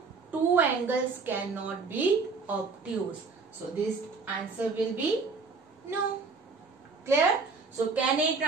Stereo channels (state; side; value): quieter; left; 4.5 dB